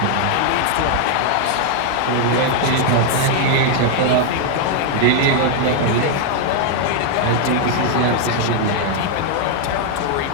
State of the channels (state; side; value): different; both; correlation 0.00